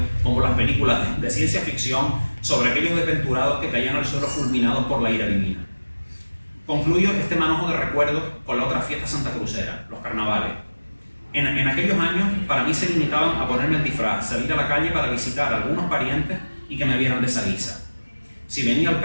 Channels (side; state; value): both; inverted; correlation -1.00